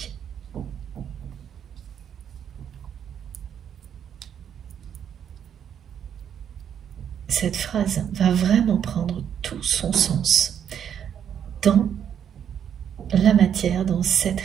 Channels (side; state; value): left; quieter; 8.7 dB